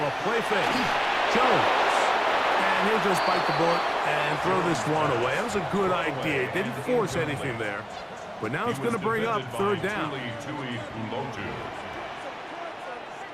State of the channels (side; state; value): both; identical; correlation 1.00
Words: play fake. Jones. And he'll just bite the bullet and throw this one away. That was a good idea. Didn't force anything there. But now it's going to bring up 3rd down.